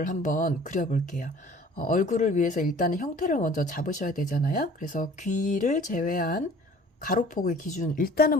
한번 그려볼게요. 얼굴을 위해서 일단은 형태를 먼저 잡으셔야 되잖아요. 그래서 귀를 제외한 가로폭의 기준,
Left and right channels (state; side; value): normal; both; correlation 0.49